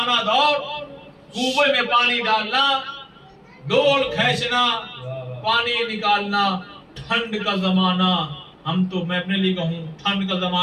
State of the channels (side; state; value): both; identical; correlation 1.00